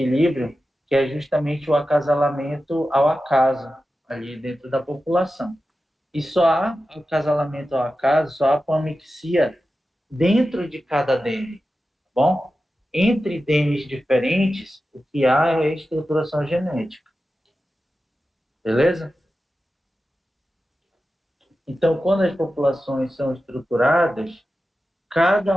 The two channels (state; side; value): normal; both; correlation 0.93